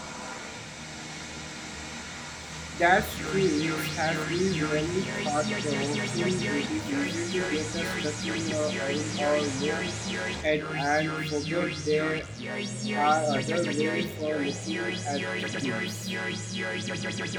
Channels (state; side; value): identical; both; correlation 1.00